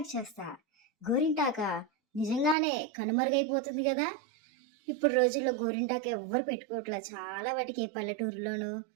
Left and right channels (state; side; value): drops out; left; at 2.6 s